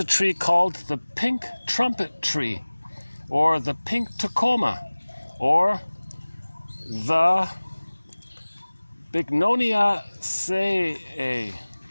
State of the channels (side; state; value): both; inverted; correlation -1.00